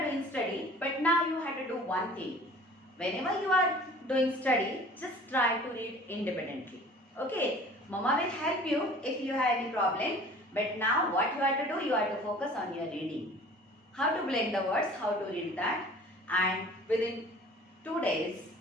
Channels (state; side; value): normal; both; correlation 0.47